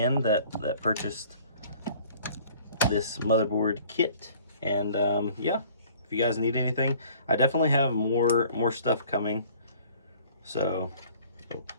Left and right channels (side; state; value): both; inverted; correlation -0.52